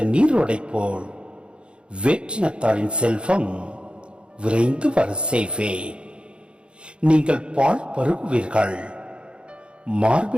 நீரோடை போல் வேற்றினத்தாரின் செல்வம் விரைந்து வர செய்வேன். நீங்கள் பால் பருகுவீர்கள்,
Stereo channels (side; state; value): left; late; 0.056 ms